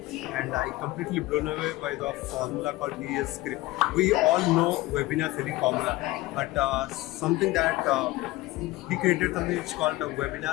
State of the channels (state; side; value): quieter; right; 19.0 dB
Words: and I completely blown away by the formula called VS script. We all know Webinar Hiring Formula, but something that he created something it's called a